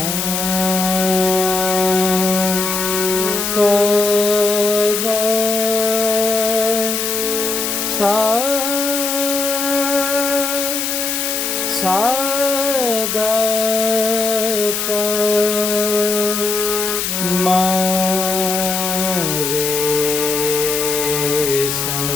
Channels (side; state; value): left; noise; hiss, 1 dB below the sound